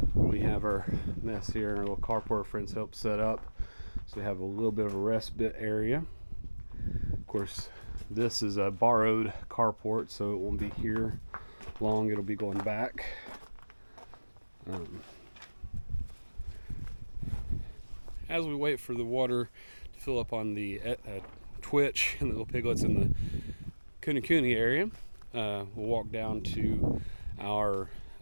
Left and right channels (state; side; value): inverted; both; correlation -1.00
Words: We have our mess here, our little carport our friends helped set up, so we have a little bit of a respite area. Of course, this is a borrowed carport, so it won't be here long. It'll be going back. As we wait for the water to fill up on the Twitch and the little piglets in the Cooney area, we'll walk down to our